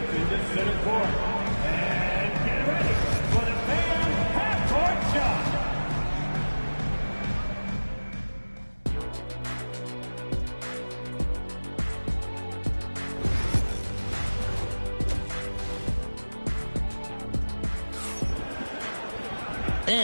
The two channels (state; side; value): inverted; both; correlation -1.00